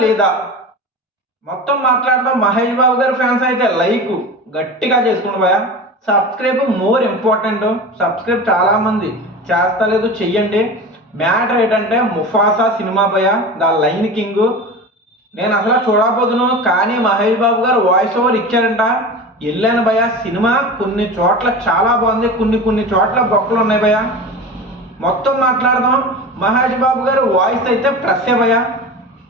లేదా మొత్తం మాట్లాడదాం. మహేష్ బాబు గారి ఫ్యాన్స్ అయితే లైక్ గట్టిగా చేసుకోండి భయ్య. Subscribe more important. సబ్స్క్రైబ్ చాలా మంది చేస్తలేదు, చెయ్యండి. మ్యాటర్ ఏంటంటే ముఫాసా సినిమా భయ్య, ద లైన్ కింగ్. నేను అసలు చూడకపోదును, కానీ మహేష్ బాబు గారు వాయిస్ ఓవర్ ఇచ్చారంట. వెళ్ళాను భయ్య. సినిమా కొన్ని చోట్ల చాలా బాగుంది, కొన్ని చోట్ల బొక్కలు ఉన్నాయి భయ్య. మొత్తం మాట్లాడదాం. మహేష్ బాబు గారు వాయిస్ అయితే ప్లస్సే భయ్య.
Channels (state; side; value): normal; both; correlation 0.30